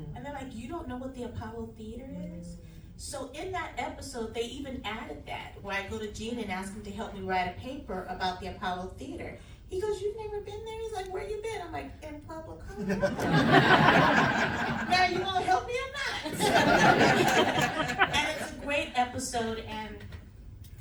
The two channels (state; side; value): identical; both; correlation 1.00